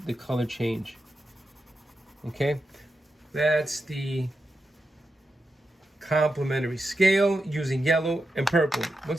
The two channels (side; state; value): both; normal; correlation 0.88